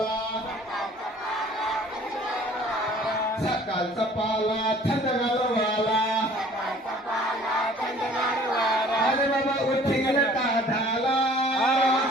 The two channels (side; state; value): both; normal; correlation 0.52